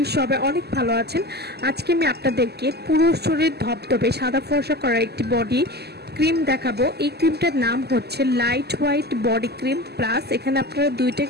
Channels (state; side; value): late; left; 0.47 ms